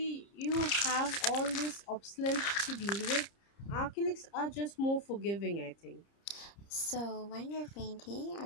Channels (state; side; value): late; right; 30 ms